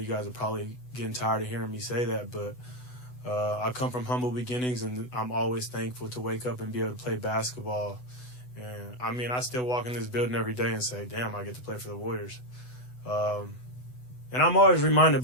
guys are probably getting tired of hearing me say that, but I come from humble beginnings, and I'm always thankful to wake up and be able to play basketball. And, I still walk in this building every day and say, damn, I get to play for the Warriors. And I'm always reminded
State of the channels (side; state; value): right; late; 8.0 ms